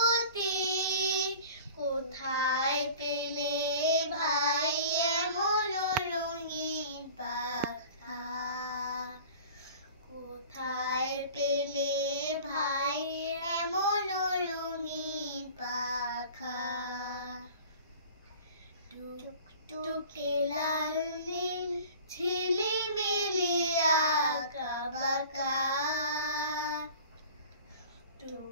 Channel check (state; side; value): inverted; both; correlation -0.44